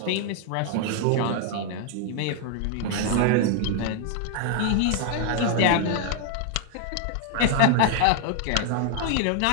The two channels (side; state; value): both; different; correlation 0.00